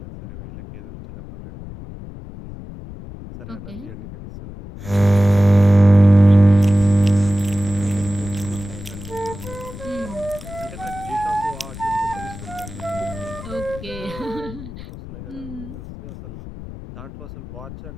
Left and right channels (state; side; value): noise; left; rumble, 13 dB below the sound